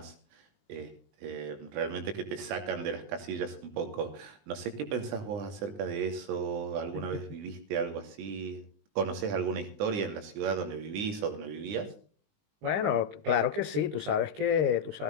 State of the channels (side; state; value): left; late; 20 ms